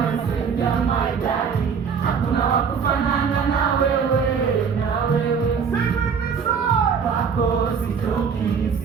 maidadi, hakuna wa kufanana na wewe, wako sitoki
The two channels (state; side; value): quieter; left; 6.4 dB